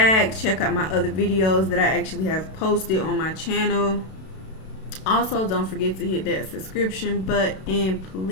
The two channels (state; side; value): late; right; 32 ms